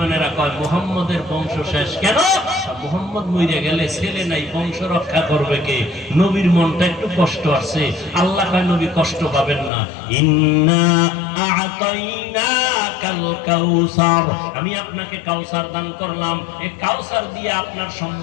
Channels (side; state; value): right; drops out; at 9.7 s